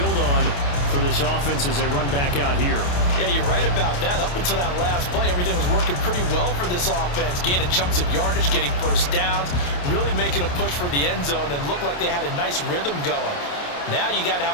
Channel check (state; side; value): late; right; 28 ms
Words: on for this offense as they run back out here. Yeah, you're right about that. Up until that last play, everything was working pretty well for this offense, gaining chunks of yardage, getting first downs, really making a push for the end zone, and looked like they had a nice rhythm going. Now you got to